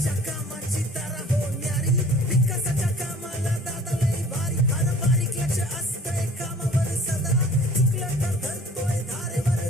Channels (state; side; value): normal; both; correlation 0.50